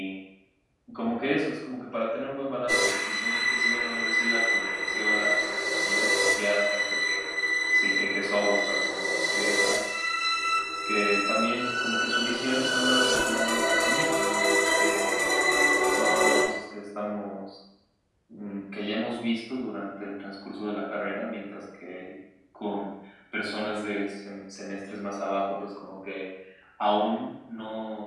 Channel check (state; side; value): identical; both; correlation 1.00